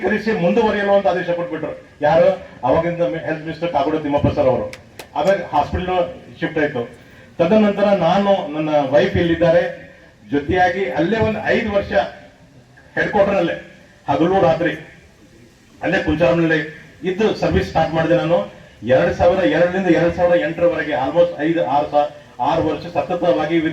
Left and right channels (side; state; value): both; identical; correlation 1.00